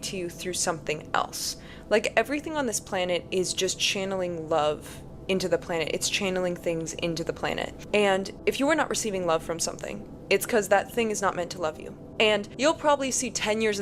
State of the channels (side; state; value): both; identical; correlation 1.00